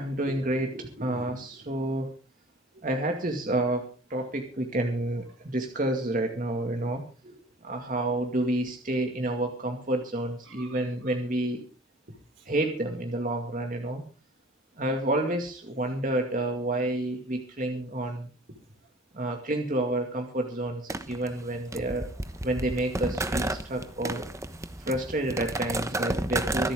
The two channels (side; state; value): both; normal; correlation 0.48